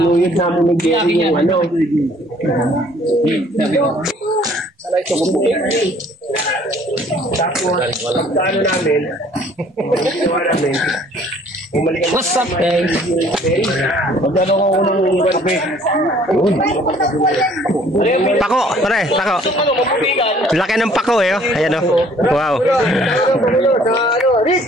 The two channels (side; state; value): both; normal; correlation 0.57